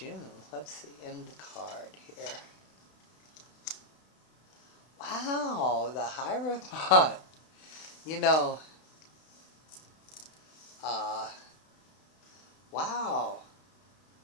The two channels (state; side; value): late; right; 32 ms